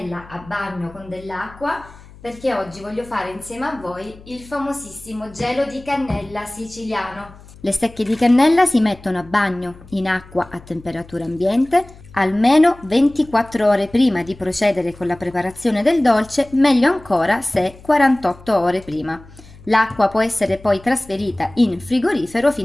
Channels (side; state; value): left; noise; hum, 21 dB below the sound